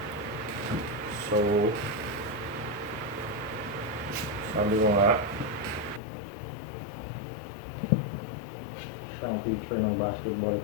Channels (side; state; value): right; drops out; at 6.0 s